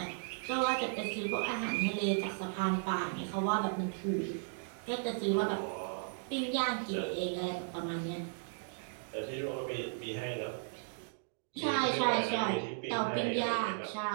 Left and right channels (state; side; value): silent; left; digital silence